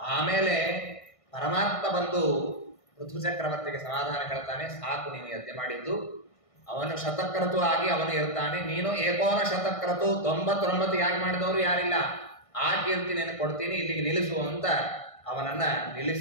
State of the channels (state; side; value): late; right; 1.6 ms